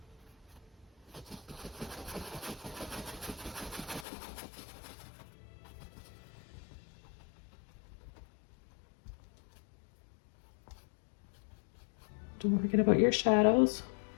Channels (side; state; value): right; drops out; at 4.0 s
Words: Don't forget about your shadows.